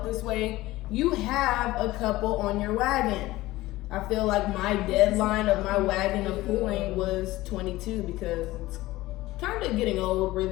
this way, you have a couple on your wagon. I feel like my deadline of my wagon of pulling was 22 because it's kind of getting old,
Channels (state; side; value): quieter; right; 17.9 dB